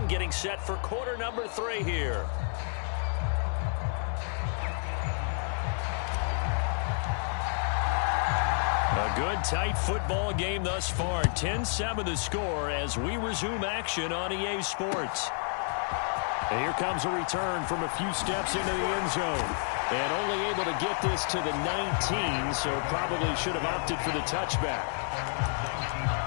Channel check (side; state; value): right; silent; 58 dB below the other